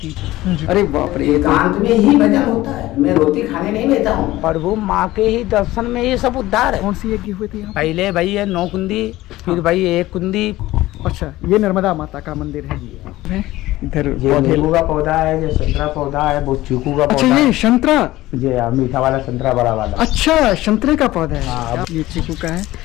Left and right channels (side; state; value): right; quieter; 17.0 dB